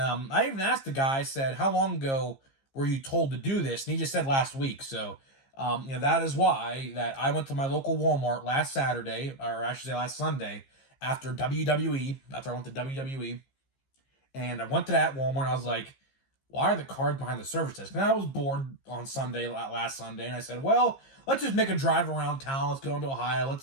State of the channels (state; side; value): late; right; 15 ms